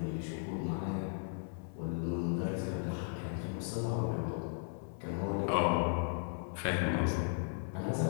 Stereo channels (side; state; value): right; silent; 54 dB below the other